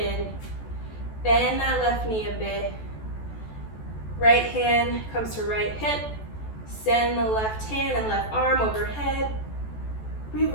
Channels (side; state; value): right; late; 14 ms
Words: Bend that left knee a bit. Right hand comes to right hip. Send the left hand and left arm overhead.